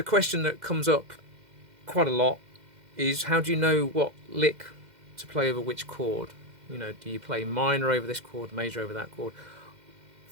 question that comes up quite a lot is, how do you know what lick to play over which chord? You know, do you play minor over this chord, major over that chord?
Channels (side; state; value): left; late; 2.1 ms